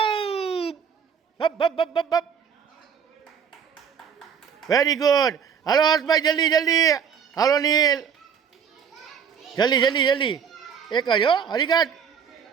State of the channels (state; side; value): quieter; left; 7.3 dB